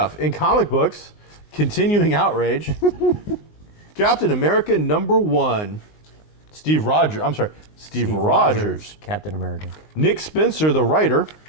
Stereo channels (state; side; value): late; right; 19 ms